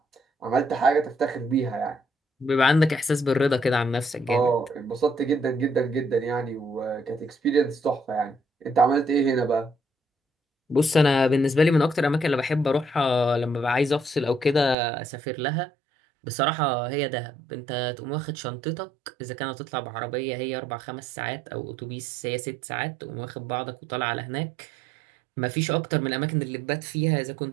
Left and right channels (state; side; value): drops out; left; at 14.8 s